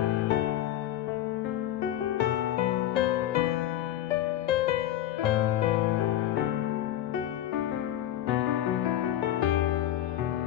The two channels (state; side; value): quieter; right; 12.5 dB